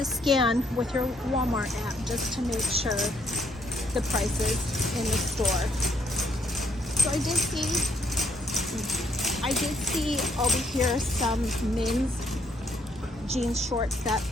scan with your Walmart app just to make sure the prices in the store. So I did see over here some men's jeans shorts that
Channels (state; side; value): normal; both; correlation 0.71